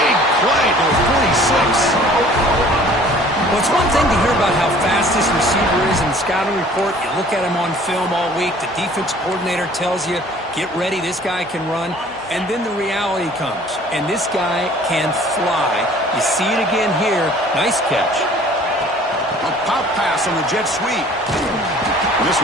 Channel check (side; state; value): both; normal; correlation 0.51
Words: play to the 46. Well, it's one thing to hear about how fast this receiver is in the scouting report. You look at him on film all week. The defense coordinator tells you, get ready, this guy can run. And then the reality comes, and this guy can fly. You see it again here. Nice catch. A pop pass on the jet sweep. This